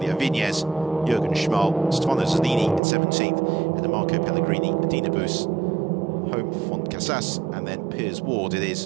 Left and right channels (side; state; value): left; drops out; at 2.8 s